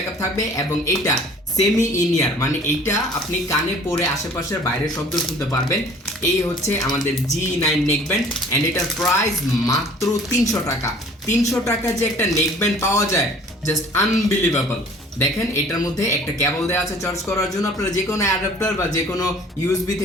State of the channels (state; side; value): normal; both; correlation 0.51